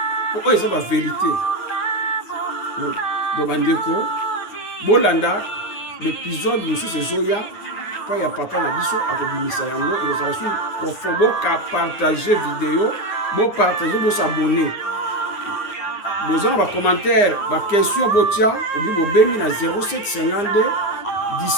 po oyo eza ba vérité donc bandeko bolanda l'épisode mosusu ezoya pa ya papa na biso akobimisa yango ekozala su profond ka partager vidéo bo partager bo s'abonner bozana ba commentaire ba question botia obi bobengi na 0752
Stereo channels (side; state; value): right; late; 9.6 ms